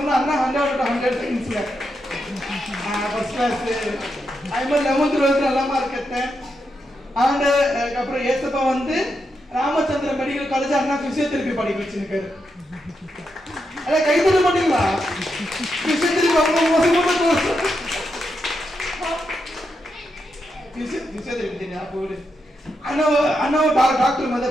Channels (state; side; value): normal; both; correlation 0.84